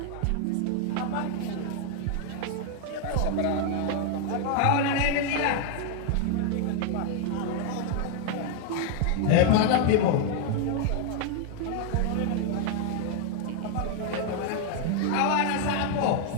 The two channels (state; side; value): different; both; correlation 0.01